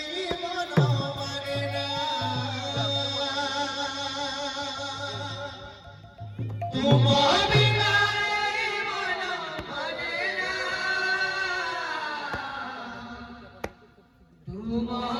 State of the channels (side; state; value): both; identical; correlation 1.00